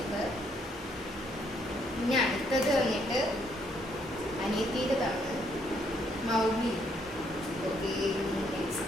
പിന്നെ അടുത്തത് വന്നിട്ട് അനിയത്തിയുടേതാണ്, മൗലി. ഓക്കെ,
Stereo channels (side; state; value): both; normal; correlation 0.71